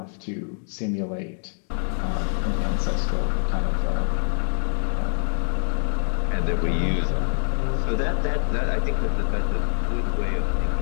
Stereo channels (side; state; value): right; silent; 62 dB below the other